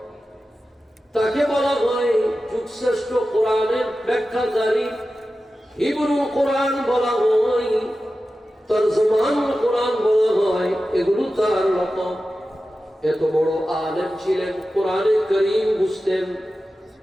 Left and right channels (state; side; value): normal; both; correlation 0.94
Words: তাকে বলা হয় যুগশ্রেষ্ঠ কোরআনের ব্যাখ্যাকারী, হিব্রু কোরআন বলা হয়, তরজমানুল কোরআন বলা হয়, এগুলো তার লকব। এত বড় আলেম ছিলেন, কোরআনে কারীম বুঝতেন,